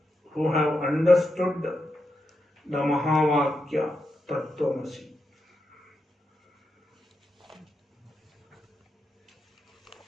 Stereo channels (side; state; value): both; normal; correlation 0.86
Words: who have understood the Mahavakya Tattvamasi.